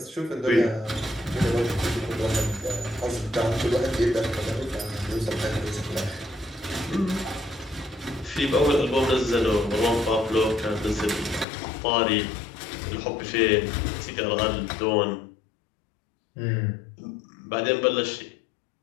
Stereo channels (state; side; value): drops out; right; at 11.5 s